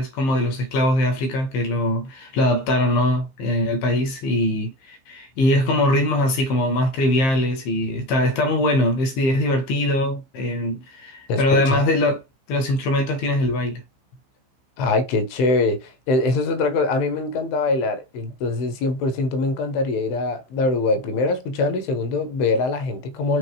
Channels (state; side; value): late; right; 15 ms